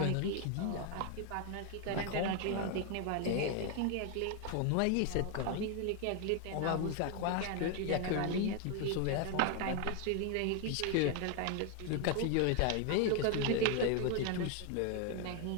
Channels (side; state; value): both; different; correlation 0.01